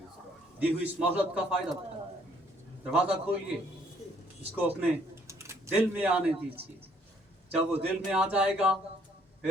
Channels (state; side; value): normal; both; correlation 0.64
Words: दी हुई इस मोहलत का फायदा उठाइए। दरवाजा खोलिए, इसको अपने दिल में आने दीजिए। जब वो दिल में आ जाएगा,